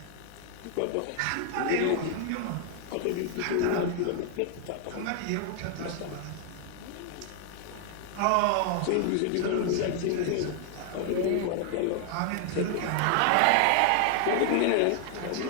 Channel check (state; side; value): different; both; correlation 0.00